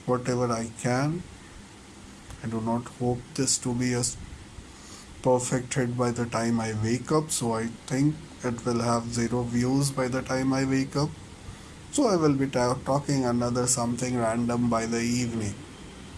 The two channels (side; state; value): both; identical; correlation 1.00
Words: whatever I can. I do not hope this to be a perfect hit by the time I wake up, so I think it will have zero views by the time I wake up. So I will be talking another something random by the evening.